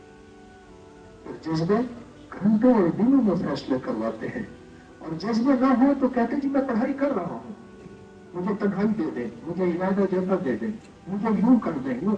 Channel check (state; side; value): identical; both; correlation 1.00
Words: جذبے گھنٹوں اور دنوں میں فیصلے کرواتے ہیں، اور جذبے نہ ہو تو کہتے جی میں پڑھائی کر رہا ہوں، مجھے تنہائی دے دیں، مجھے ارادہ جیسا دے دیں، مجھے یوں کر دیں یوں